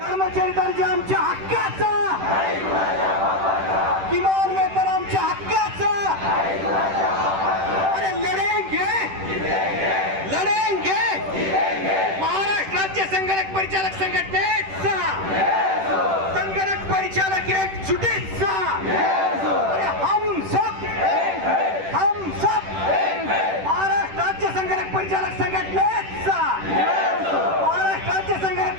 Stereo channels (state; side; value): late; left; 10 ms